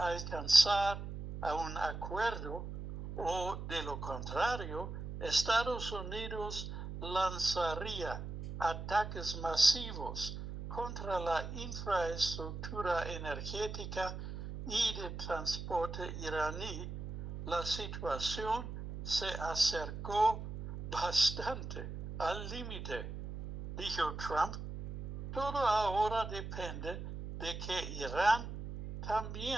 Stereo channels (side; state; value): right; noise; hum, 7 dB below the sound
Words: a un acuerdo, o de lo contrario, Estados Unidos lanzaría ataques masivos contra la infraestructura energética y de transporte iraní. La situación se acercó bastante al límite, dijo Trump. Todo ahora depende de que Irán